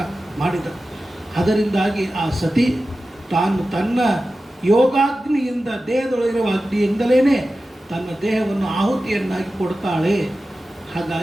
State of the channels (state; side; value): normal; both; correlation 0.94